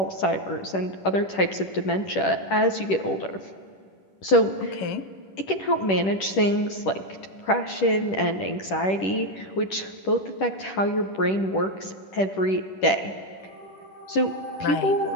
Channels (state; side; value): late; right; 10 ms